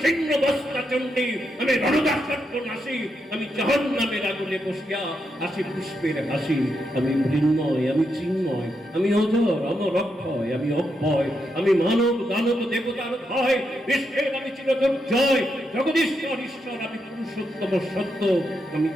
বস্তা চণ্ডী, আমি রণদাসত্ব নাসি, আমি জাহান্নামের আগুনে বসিয়া হাসি পুষ্পের হাসি, আমি মৃন্ময় আমি চিন্ময়, আমি অজর অমর অক্ষয়, আমি অব্যয়, আমি মানব দানব দেবতার ভয়, বিশ্বের আমি চিরদুর্জয়, জগদীশ্বর ঈশ্বর আমি পুরুষোত্তম সত্য, আমি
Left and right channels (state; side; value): normal; both; correlation 0.82